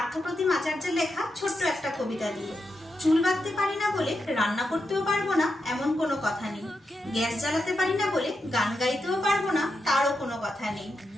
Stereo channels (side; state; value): both; normal; correlation 0.86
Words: আচার্যের লেখা ছোট্ট একটা কবিতা দিয়ে। চুল বাঁধতে পারি না বলে রান্না করতেও পারবো না এমন কোনো কথা নেই, গ্যাস জ্বালাতে পারি না বলে গান গাইতেও পারবো না তারও কোনো কথা নেই,